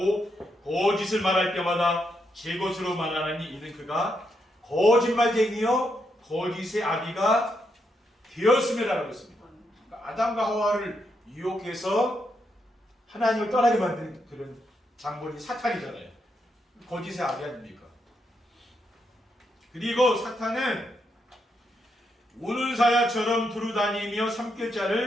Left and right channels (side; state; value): both; normal; correlation 0.80